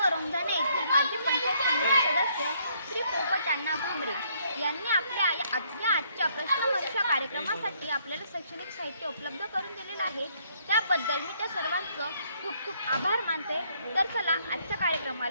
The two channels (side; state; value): both; inverted; correlation -0.68